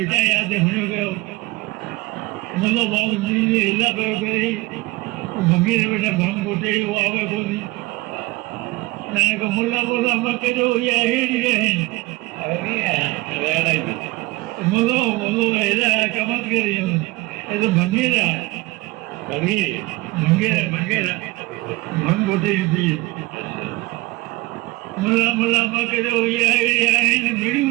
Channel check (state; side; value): quieter; left; 20.8 dB